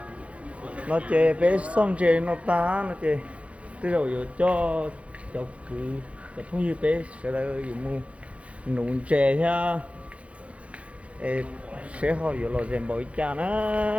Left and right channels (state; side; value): late; left; 0.063 ms